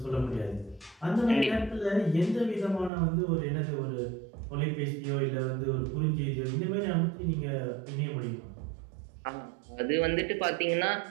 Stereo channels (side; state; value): left; drops out; at 2.9 s